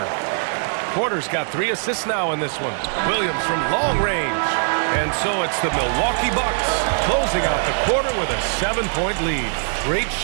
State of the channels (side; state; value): left; silent; digital silence